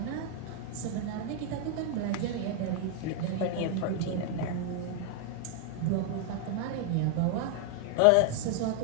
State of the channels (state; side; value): different; both; correlation 0.00